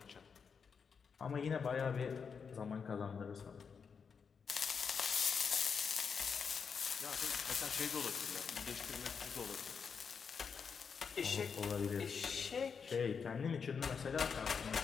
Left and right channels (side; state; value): right; quieter; 6.1 dB